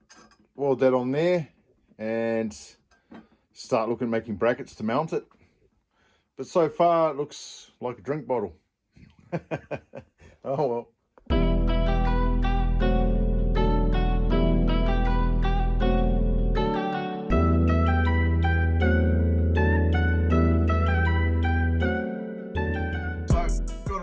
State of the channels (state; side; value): identical; both; correlation 1.00